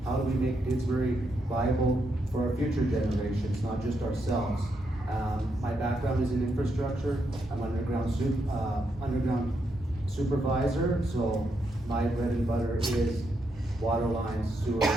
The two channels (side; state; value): both; normal; correlation 0.80